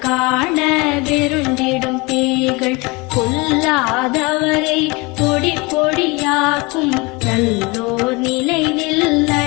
காண வெருண்டிடும் பேய்கள் கொல்லாதவரை பொடி பொடியாக்கும் நல்லோர் நினைவில்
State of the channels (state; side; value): quieter; right; 26.3 dB